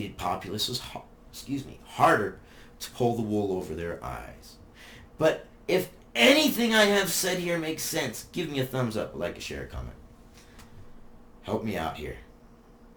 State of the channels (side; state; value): both; identical; correlation 1.00